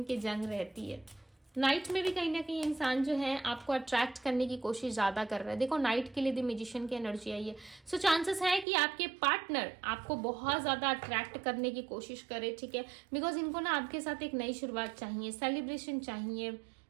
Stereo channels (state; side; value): drops out; left; at 8.7 s